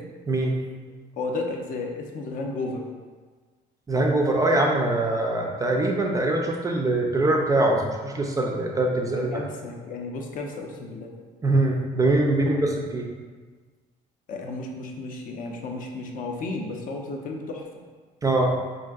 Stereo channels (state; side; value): normal; both; correlation 0.60